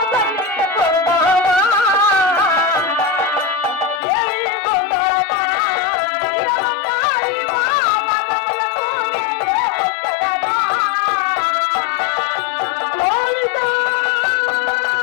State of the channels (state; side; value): drops out; right; at 4.0 s